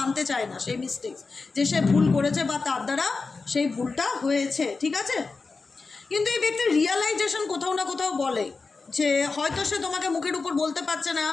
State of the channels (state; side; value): quieter; right; 4.2 dB